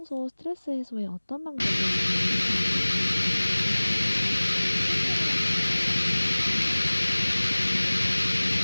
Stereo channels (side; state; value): both; inverted; correlation -1.00